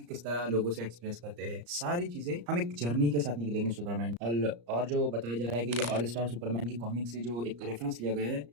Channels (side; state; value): left; late; 34 ms